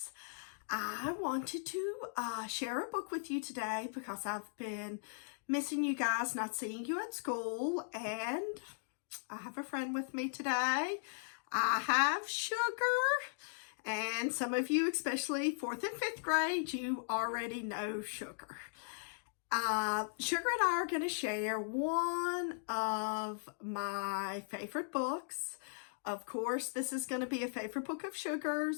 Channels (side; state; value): right; silent; digital silence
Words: I wanted to share a book with you today because I've been missing you guys, not seeing you at school, and I have a friend with me today. I have Sugar, and some of you, especially 4th and 5th grade, you already know Sugar. Sugar and I are going to share one of my favorite books. Of course, this is going to be a favorite book of